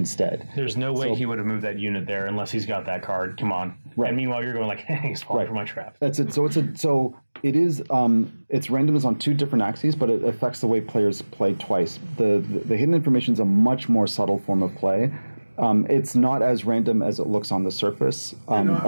There's no way he would have moved that unit there unless he's got that card. Come on. Right. And meanwhile, you're going like, hey, he's falling for my trap. That's it. So it is its randomness on 2 different axes, but it affects the way players play twice. The hidden information is a much more subtle form of play. It's not as random as it looks on the surface,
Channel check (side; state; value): both; inverted; correlation -1.00